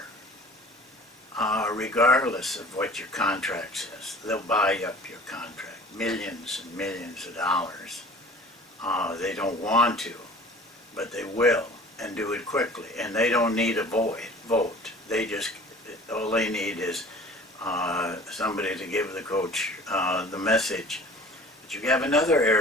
regardless of what your contract says. They'll buy up your contract, millions and millions of dollars. They don't want to, but they will, and do it quickly. And they don't need a vote. They just, all they need is somebody to give the coach the message. But you have another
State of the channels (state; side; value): normal; both; correlation 0.45